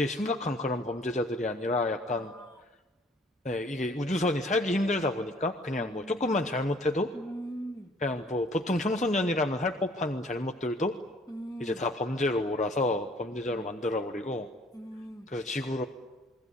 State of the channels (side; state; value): both; normal; correlation 0.57